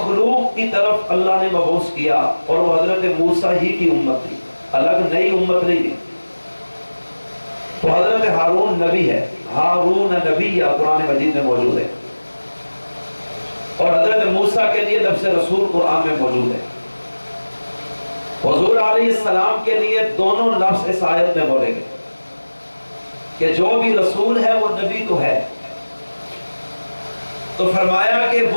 کی طرف اللہ نے مبعوث کیا، اور وہ حضرت موسیٰ ہی کی امت تھی، الگ نئی امت نہیں تھی۔ تو حضرت ہارون نبی ہے، ہارون نبی یا قرآن مجید میں موجود ہے، اور حضرت موسیٰ کے لیے لفظ رسول قرآن میں موجود ہے۔ حضور علیہ السلام کے لیے دونوں لفظ اس آیت میں بولے گئے کہ جو بھی رسول ہے وہ نبی تو ہے۔ تو فرمایا کہ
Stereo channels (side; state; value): both; inverted; correlation -1.00